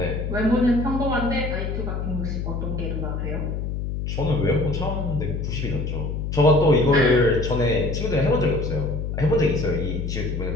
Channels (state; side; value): noise; left; hum, 3 dB below the sound